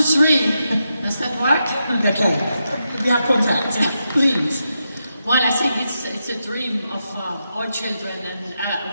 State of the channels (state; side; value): inverted; both; correlation -0.85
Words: Does that work? Okay. We have contact. Please. Well, I think it's a dream of all children